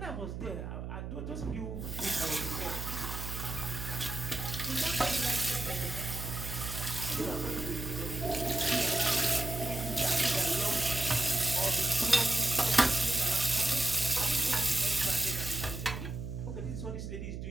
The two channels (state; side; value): noise; right; hum, 6 dB below the sound